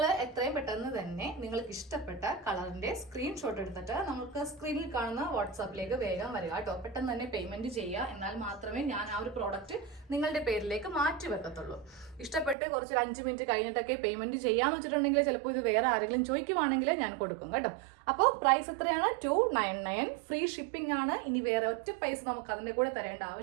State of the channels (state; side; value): drops out; left; at 12.6 s